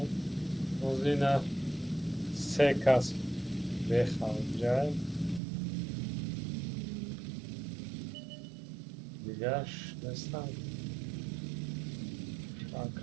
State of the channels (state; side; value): drops out; left; at 5.4 s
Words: روز اینا 3 کس بخوام دیگهش نیستم